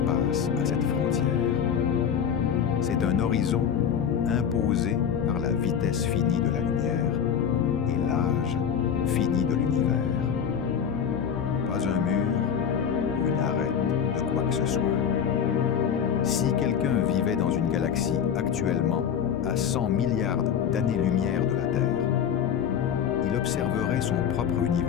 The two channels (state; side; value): quieter; right; 8.0 dB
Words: à cette frontière. C'est un horizon imposé par la vitesse finie de la lumière et l'âge fini de l'univers. Pas un mur ou une arête de quoi que ce soit. Si quelqu'un vivait dans une galaxie actuellement à 100 milliards d'années-lumière de la Terre, il observerait son propre